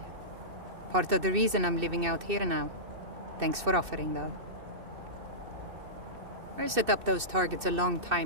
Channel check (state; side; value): late; left; 2.6 ms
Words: Part of the reason I'm living out here now. Thanks for offering, though. I set up those targets a long